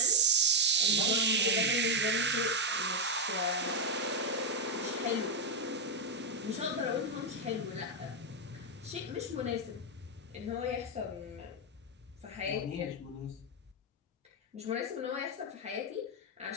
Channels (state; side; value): normal; both; correlation 0.03